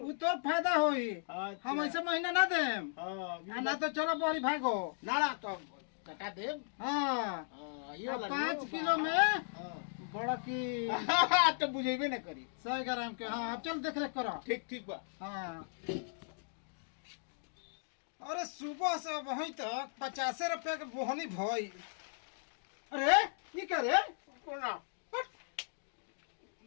तोर फायदा होई। हम ऐसे महीना ना देम ना तो चलो बड़ी भागो ना तो कटा देब। हाँ ये 5 किलो में बड़ा की तो बुझेबे ना करी 100 ग्राम के। हाँ अब चल देख रेख करो। ठीक बा। हाँ अरे सुबह से वहीं तक 50 रुपया के बोहनी भई। अरे ये क्या रे? कोना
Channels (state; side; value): silent; right; digital silence